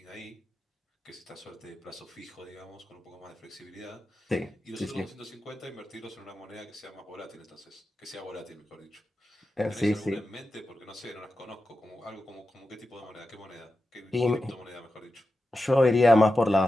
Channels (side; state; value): both; normal; correlation 0.92